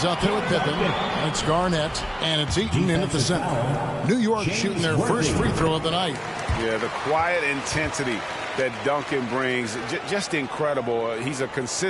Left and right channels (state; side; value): identical; both; correlation 1.00